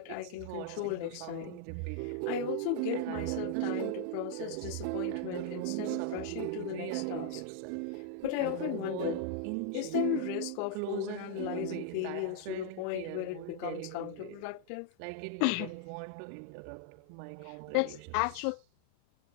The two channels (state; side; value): different; both; correlation 0.00